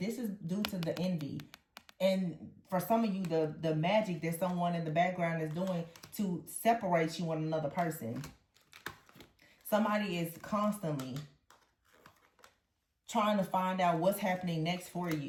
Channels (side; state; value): both; identical; correlation 1.00